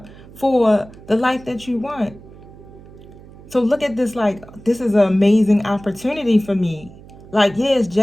for the life that you want. So look at this like, this is an amazing opportunity for me. Like, yeah, it's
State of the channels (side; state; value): right; noise; hum, 20 dB below the sound